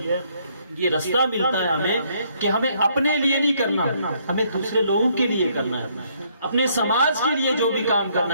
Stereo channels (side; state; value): both; inverted; correlation -0.68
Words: یہ رستہ ملتا ہے ہمیں کہ ہمیں اپنے لیے نہیں کرنا، ہمیں دوسرے لوگوں کے لیے کرنا ہے، اپنے سماج کے لیے جو بھی کام